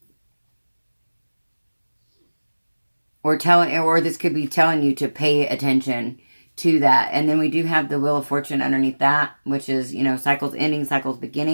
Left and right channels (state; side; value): inverted; both; correlation -1.00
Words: this could be telling you to pay attention to that. And then we do have the Wheel of Fortune underneath that, which is, cycles ending, cycles